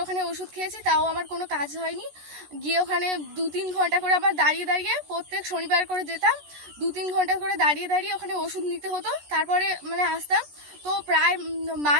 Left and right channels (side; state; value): left; late; 14 ms